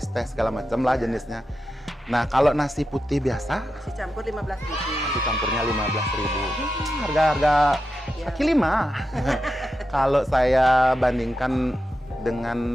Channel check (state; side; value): normal; both; correlation 0.89